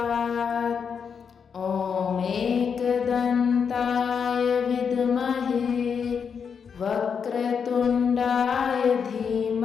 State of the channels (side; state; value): right; quieter; 6.6 dB